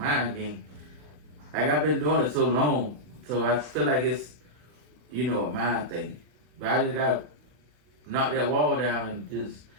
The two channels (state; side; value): late; left; 40 ms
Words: game. Like I've been doing it so long, so I feel like it's, a mind thing. But I just gotta knock that wall down and just